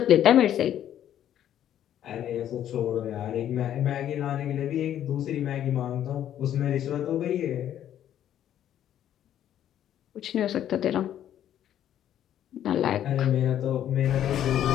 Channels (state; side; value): quieter; right; 10.9 dB